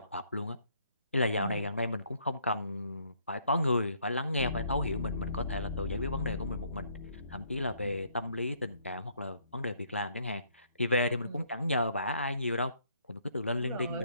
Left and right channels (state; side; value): inverted; both; correlation -0.66